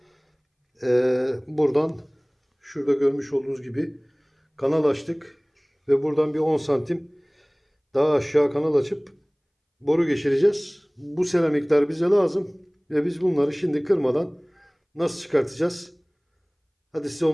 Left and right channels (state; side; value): identical; both; correlation 1.00